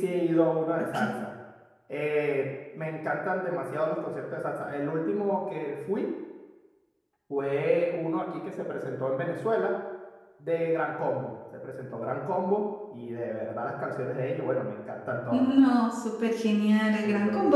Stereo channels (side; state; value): both; identical; correlation 1.00